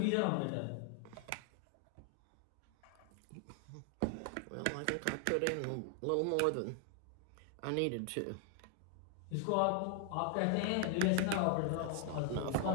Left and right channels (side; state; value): both; different; correlation 0.00